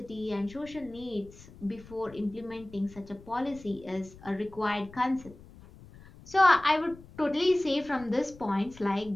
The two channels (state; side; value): noise; left; rumble, 20 dB below the sound